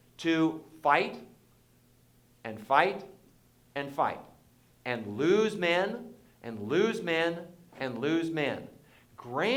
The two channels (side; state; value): both; identical; correlation 1.00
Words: to fight and fight and fight and lose men and lose men and lose men.